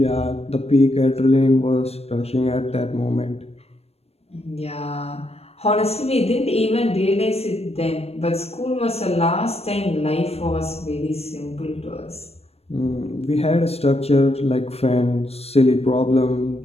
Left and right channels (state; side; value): late; right; 0.29 ms